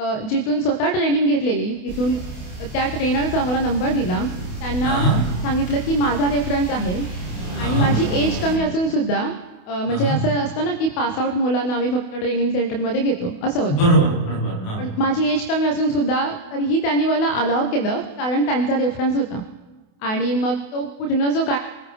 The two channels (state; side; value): late; right; 28 ms